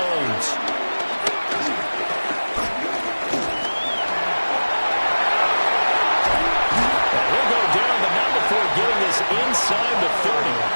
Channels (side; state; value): both; inverted; correlation -1.00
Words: Getting this inside the 30.